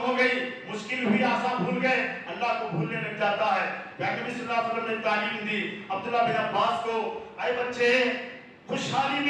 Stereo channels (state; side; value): identical; both; correlation 1.00